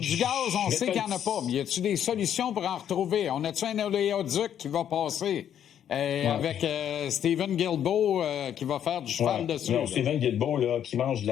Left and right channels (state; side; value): quieter; right; 9.7 dB